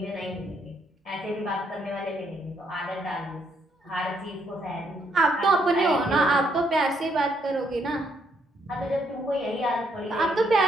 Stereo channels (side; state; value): both; normal; correlation 0.73